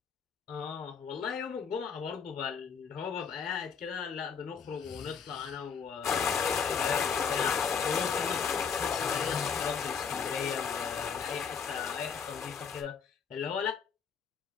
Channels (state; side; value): quieter; right; 6.4 dB